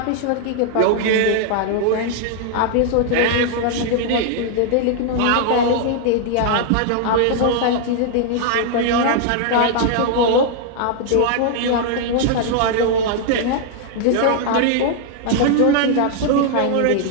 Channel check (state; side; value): different; both; correlation 0.00